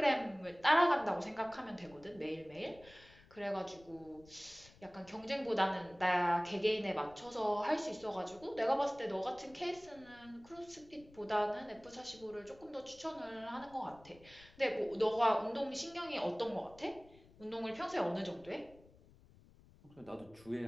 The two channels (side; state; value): left; noise; rumble, 24 dB below the sound